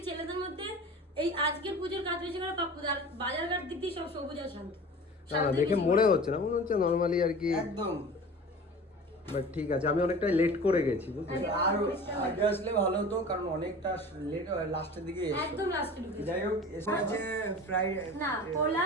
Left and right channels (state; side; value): normal; both; correlation 0.38